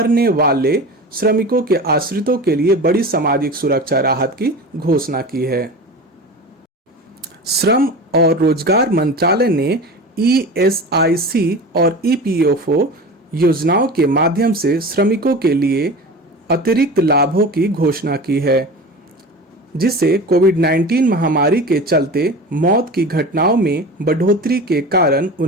वाले श्रमिकों के आश्रितों के लिए बड़ी सामाजिक सुरक्षा राहत की घोषणा की है। श्रम और रोजगार मंत्रालय ने ESIC और EPFO योजनाओं के माध्यम से श्रमिकों के लिए अतिरिक्त लाभों की घोषणा की है, जिससे कोविड-19 महामारी के चलते मौत की घटनाओं में बढ़ोतरी के कारण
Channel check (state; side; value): normal; both; correlation 0.33